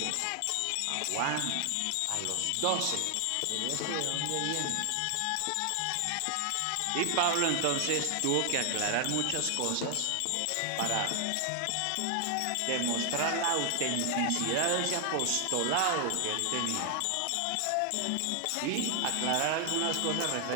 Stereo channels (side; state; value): both; different; correlation 0.00